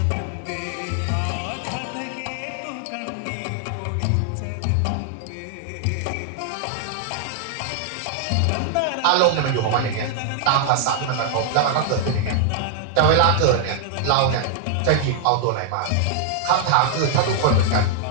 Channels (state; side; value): different; both; correlation 0.00